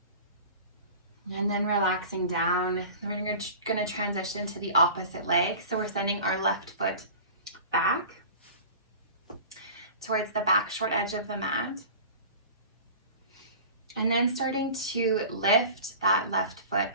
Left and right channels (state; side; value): inverted; both; correlation -0.39